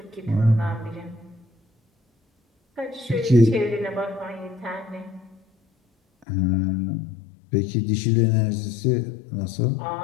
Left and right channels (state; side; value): drops out; right; at 6.2 s